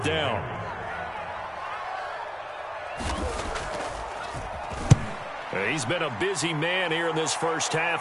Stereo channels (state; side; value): identical; both; correlation 1.00